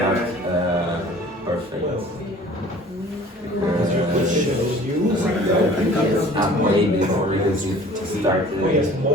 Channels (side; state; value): both; normal; correlation 0.48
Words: perfect. I'm way before because it started at